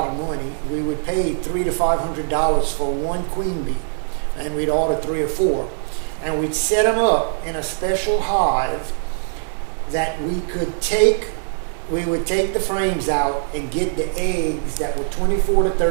of money. We would pay $300 to $500 for one queen bee, and we'd order 3 or 4, and we'd set them up in a special hive that we could take we would take the frames out and get the eggs that were 24 to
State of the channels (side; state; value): left; silent; digital silence